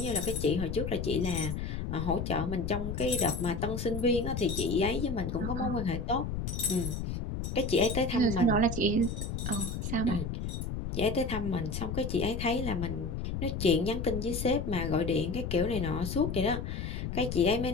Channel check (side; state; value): left; noise; rumble, 4 dB below the sound